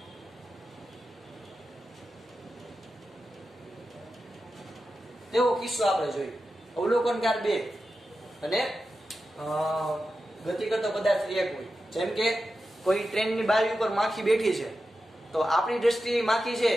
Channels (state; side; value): normal; both; correlation 0.91